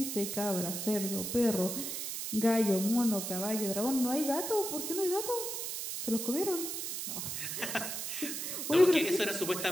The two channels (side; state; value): right; noise; hiss, 4 dB below the sound